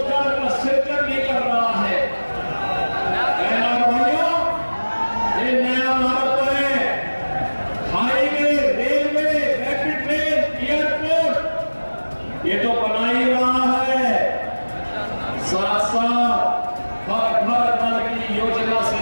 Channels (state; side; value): inverted; both; correlation -1.00